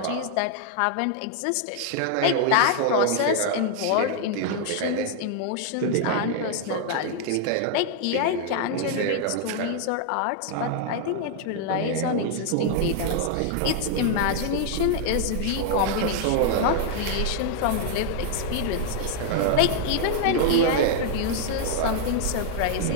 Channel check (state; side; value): different; both; correlation 0.00